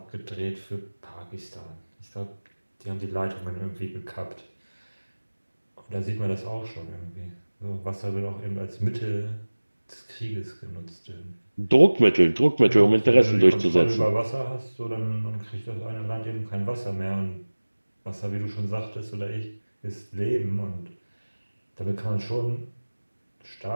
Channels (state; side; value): inverted; both; correlation -1.00